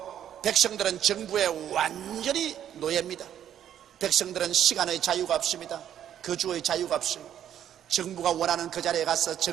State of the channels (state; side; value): quieter; left; 10.2 dB